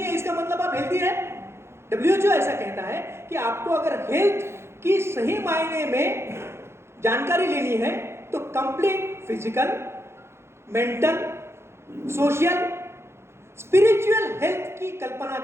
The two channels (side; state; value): left; late; 0.12 ms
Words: है इसका मतलब आप हेल्दी है। WHO ऐसा कहता है कि आपको अगर हेल्थ की सही मायने में जानकारी लेनी है तो complete physical, mental, social, spiritual health की कल्पना